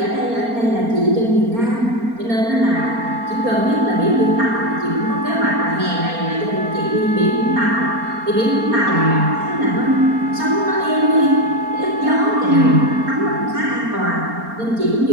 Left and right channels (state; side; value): late; left; 4.3 ms